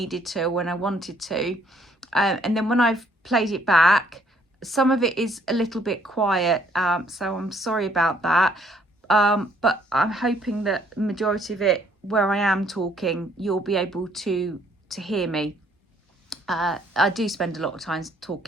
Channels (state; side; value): normal; both; correlation 0.65